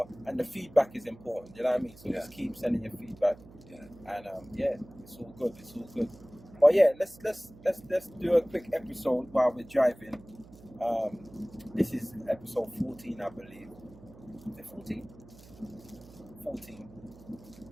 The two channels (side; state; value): right; noise; hum, 21 dB below the sound